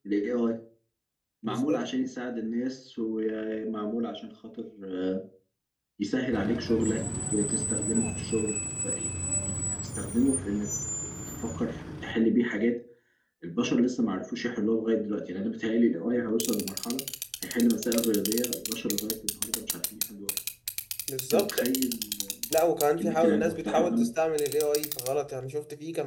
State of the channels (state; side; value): identical; both; correlation 1.00